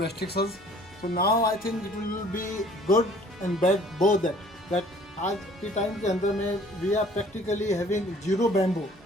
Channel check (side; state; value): both; normal; correlation 0.54